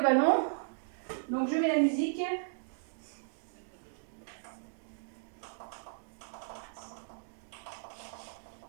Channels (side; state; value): left; silent; digital silence